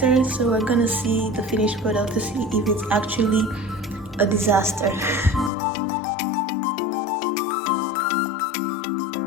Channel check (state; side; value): drops out; right; at 5.5 s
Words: So we're gonna see the finished product to see if it's actually a disaster.